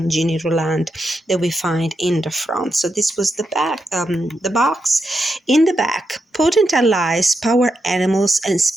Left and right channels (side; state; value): both; normal; correlation 0.85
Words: Ginny Roland that we find in the front. So this was the back, the box. In the back, potent allies, power animals, and